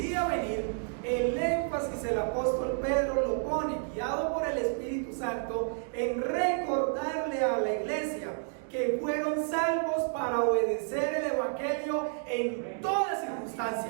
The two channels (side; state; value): left; silent; 57 dB below the other